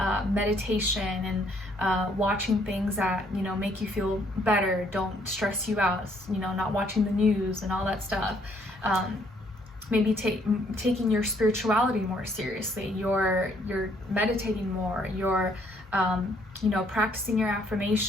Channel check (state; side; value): normal; both; correlation 0.66